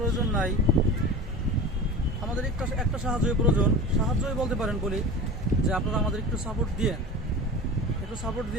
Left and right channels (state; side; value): normal; both; correlation 0.33